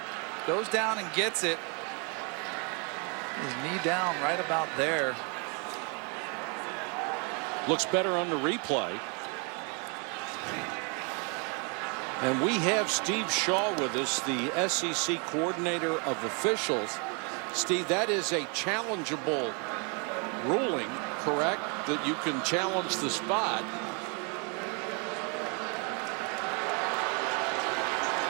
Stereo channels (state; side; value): quieter; left; 35.2 dB